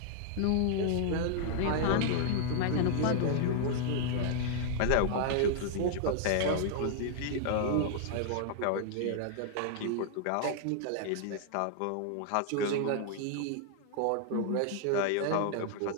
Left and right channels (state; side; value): different; both; correlation 0.00